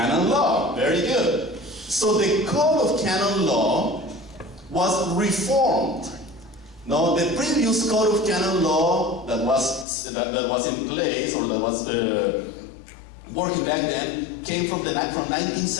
law, very good. So the code of canon law was reformed. Now, the previous code of canon law that was in place, or that was working back then, came from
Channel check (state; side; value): drops out; right; at 9.9 s